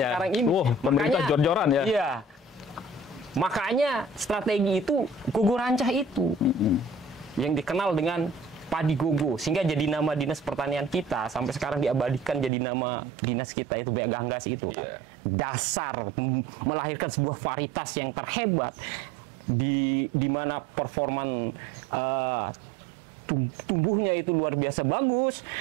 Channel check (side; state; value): left; drops out; at 12.5 s